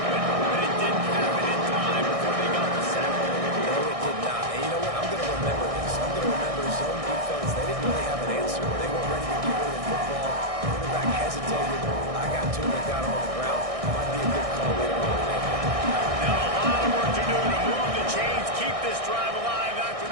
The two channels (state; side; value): late; left; 1.6 ms